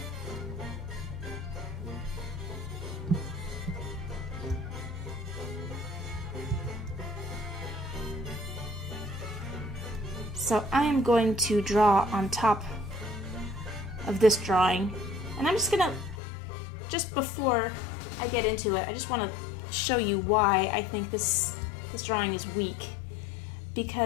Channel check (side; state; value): right; drops out; at 16.2 s